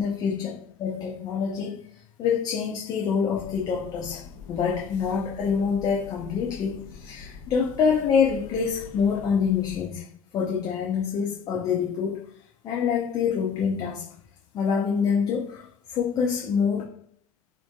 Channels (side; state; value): right; quieter; 6.2 dB